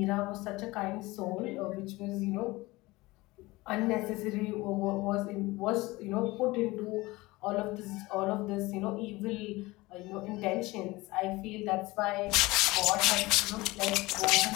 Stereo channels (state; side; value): quieter; right; 21.0 dB